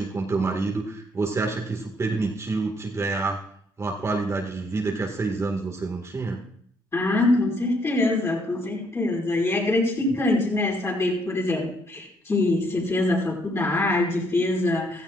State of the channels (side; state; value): both; normal; correlation 0.69